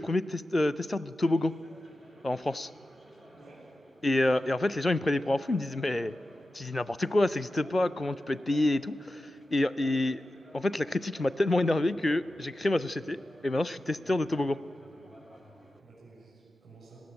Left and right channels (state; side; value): normal; both; correlation 0.93